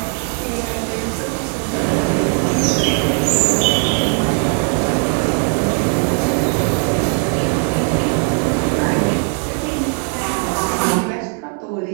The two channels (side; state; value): left; quieter; 37.7 dB